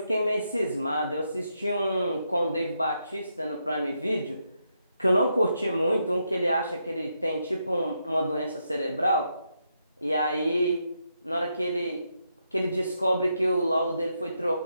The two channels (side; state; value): both; inverted; correlation -0.81